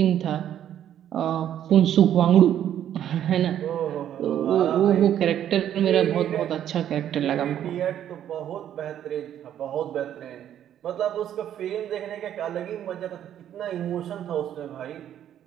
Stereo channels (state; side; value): quieter; left; 10.6 dB